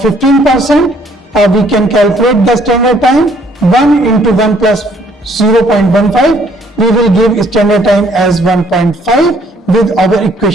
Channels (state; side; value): normal; both; correlation 0.63